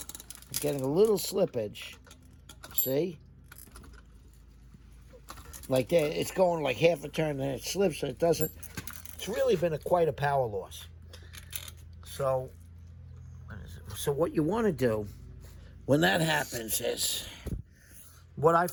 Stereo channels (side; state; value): both; identical; correlation 1.00